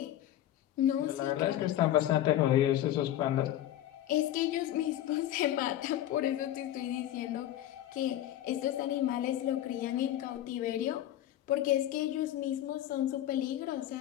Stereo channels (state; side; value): quieter; right; 12.7 dB